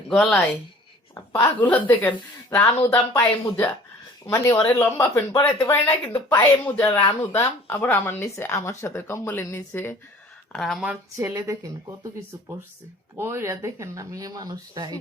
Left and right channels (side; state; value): both; normal; correlation 0.49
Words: গলায়, পাগুলো দেখেন, রানু দাম পায়ে মোজা। মানে ওরে লম্বা প্যান্ট পরাইতে পারি না, কিন্তু পায়ে মোজা রানু দাম। আবার আমার নিচে, আমার সাথে কম্বলের নিচে। আর আমার ছেলে দেখেন কত কিছু পড়ছে, পইরা দেখেন না মেয়ে মানুষটা।